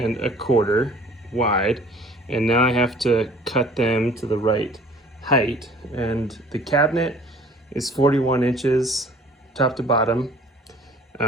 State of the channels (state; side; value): normal; both; correlation 0.51